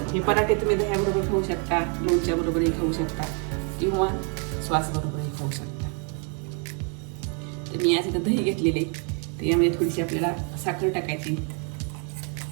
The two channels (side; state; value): left; quieter; 38.7 dB